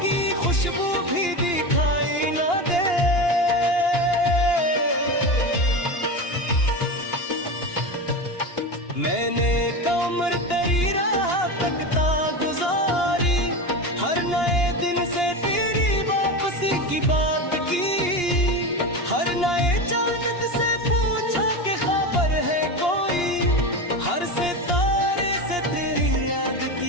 की खुशबू भी दिखाई न दे। मैंने कमर तेरी राह तकता गुजारी, हर नए दिन से तेरी वापसी की बात की, हर नए चांद से पूछा कि खबर है कोई, हर सितारे से तेरी याद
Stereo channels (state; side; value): late; right; 2.8 ms